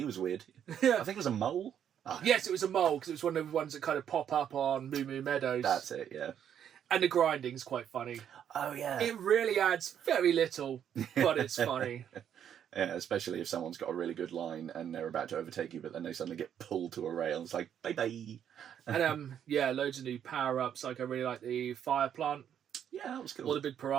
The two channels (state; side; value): quieter; left; 9.2 dB